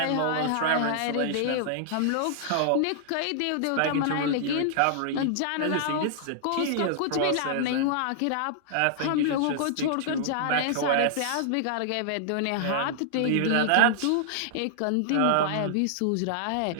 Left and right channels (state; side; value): different; both; correlation -0.01